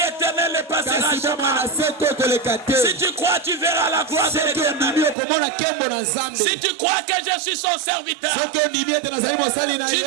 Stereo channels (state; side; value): drops out; left; at 5.2 s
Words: ne passera kasi bomona jamais. se to koleka te Si tu crois, tu verras la gloire de soki ondimi l'éternel. okomona nkembo na nzambe Si tu crois que je suis son serviteur, soki ondimi ete nazali mosali na tu ye